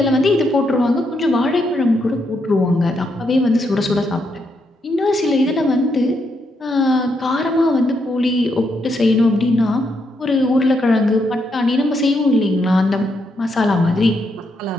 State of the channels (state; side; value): normal; both; correlation 0.79